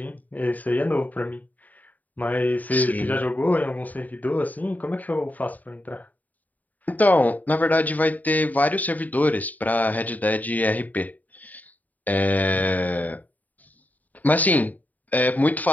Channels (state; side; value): late; right; 0.078 ms